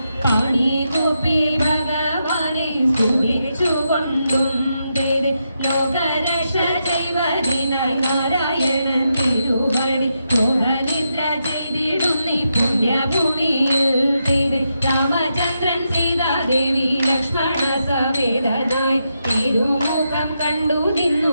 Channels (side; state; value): both; inverted; correlation -0.84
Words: പാണി കൂപ്പി ഭഗവാനെ സ്തുതിച്ചുകൊണ്ടും ലോകരക്ഷ ചെയ്വതിനായി നാരായണൻ തിരുവടി മോഹനിദ്ര ചെയ്തിടുന്നി പുണ്യഭൂമിയിൽ രാമചന്ദ്രൻ സീതാദേവി ലക്ഷ്മണ സമേതനായി തിരുമുഖം കണ്ടു